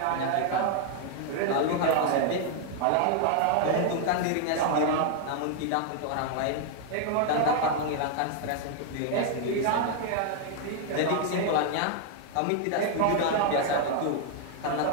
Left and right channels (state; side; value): different; both; correlation 0.00